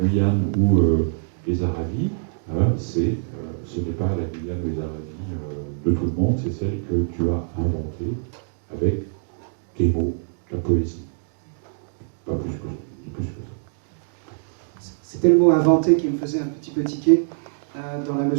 ou les Aravis, ce n'est pas la Guyane ou les Aravis de tout le monde, c'est celle que tu as inventée avec tes mots, la poésie. Pas plus que ça. C'était le mot inventé qui me faisait un petit peu tiquer, dans la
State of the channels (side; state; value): left; silent; digital silence